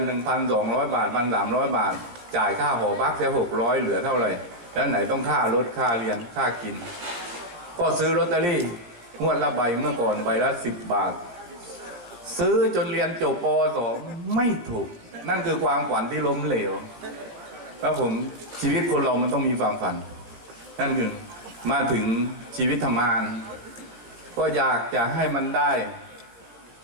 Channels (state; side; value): late; left; 17 ms